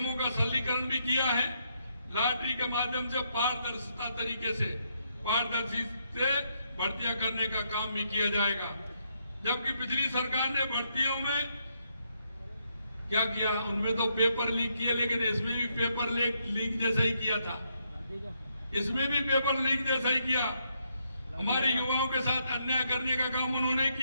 का सरलीकरण भी किया है। लॉटरी के माध्यम से पारदर्शिता तरीके से पारदर्शी से भर्तियां करने का काम भी किया जाएगा। जबकि पिछली सरकार ने भर्तियों में क्या किया, उनमें तो पेपर लीक किए, लेकिन इसमें भी पेपर लीक जैसा ही किया था, इसमें भी पेपर लीक जैसा ही किया। हमारे युवाओं के साथ अन्याय करने का काम उन्होंने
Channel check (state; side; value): inverted; both; correlation -0.77